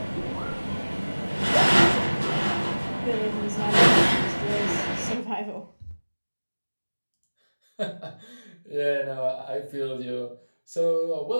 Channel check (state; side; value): inverted; both; correlation -1.00